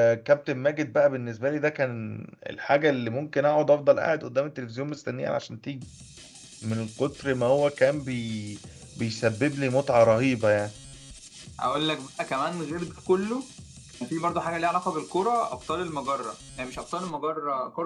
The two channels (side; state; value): both; identical; correlation 1.00